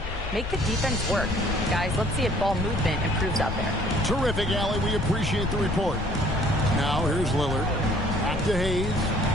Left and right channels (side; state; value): left; noise; rumble, 6 dB below the sound